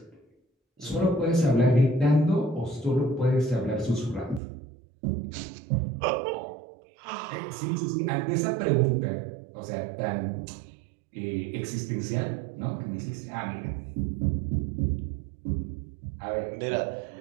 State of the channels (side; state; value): left; drops out; at 4.4 s